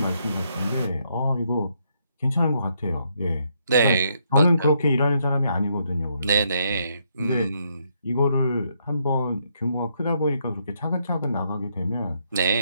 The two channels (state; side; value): inverted; both; correlation -0.75